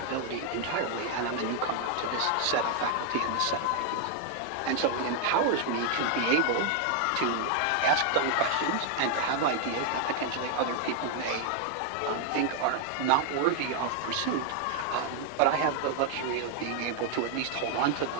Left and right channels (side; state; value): both; different; correlation 0.00